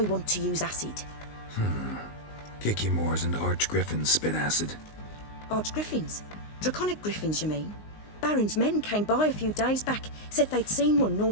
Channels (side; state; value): right; late; 19 ms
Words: want to use acid. Kicky Moors and Archgriffins spit acid. Archgriffins? Draconic griffins, you mean? Baron's men came by a few days back, said they'd seen one